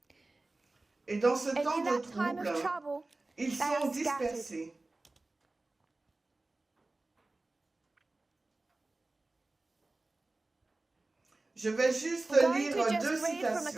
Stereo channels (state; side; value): quieter; left; 3.1 dB